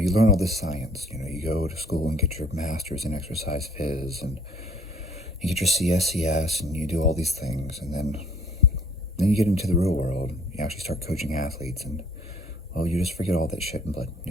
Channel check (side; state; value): both; normal; correlation 0.58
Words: learn all this science. You go to school and get your master's in exercise phys, and you get your CSCS, and you do all these things, and then you get into the real world. You actually start coaching athletes, and well, you just forget all that shit and